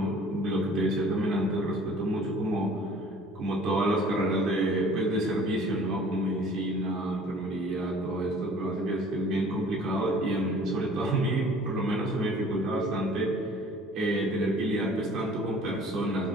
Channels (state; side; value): normal; both; correlation 0.50